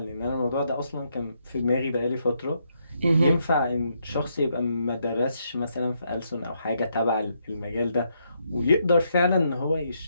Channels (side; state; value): both; inverted; correlation -0.77